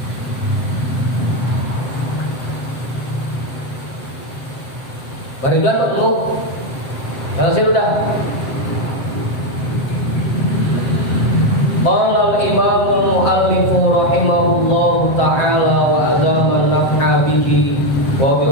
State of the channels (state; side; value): late; right; 7.8 ms